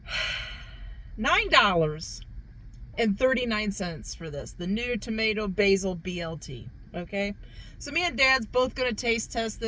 $9.39 for this. The new tomato basil BLT, okay? So me and Dad's both going to taste test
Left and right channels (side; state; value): both; identical; correlation 1.00